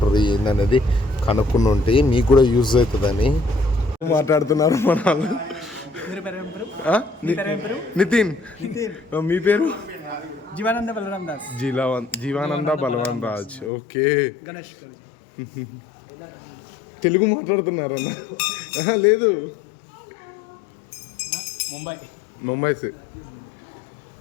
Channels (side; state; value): right; drops out; at 13.7 s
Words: ఏందనేది కనుక్కుని ఉంటే మీకు కూడా యూజ్ అవుతుందని మాట్లాడుతున్నారు మన వాళ్ళు. నితిన్, మీ పేరు? జీవానంద బలరామ్ దాస్. జీవానంద బలరామ్ రాజ్. ఓకే, తెలుగు మాట్లాడుతున్నారన్న? లేదు, ముంబై సే.